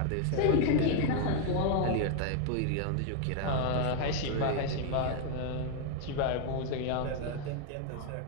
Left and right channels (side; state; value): both; different; correlation 0.00